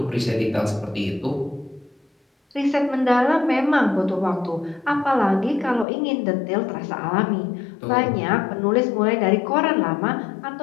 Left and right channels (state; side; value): drops out; right; at 5.9 s